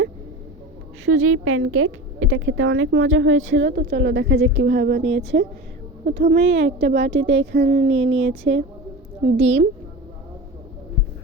সুজির প্যানকেক, এটা খেতে অনেক মজা হয়েছিল। তো চলো দেখা যাক কীভাবে বানিয়েছে। প্রথমেই একটা বাটিতে এখানে নিয়ে নিয়েছে ডিম,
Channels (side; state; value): both; normal; correlation 0.31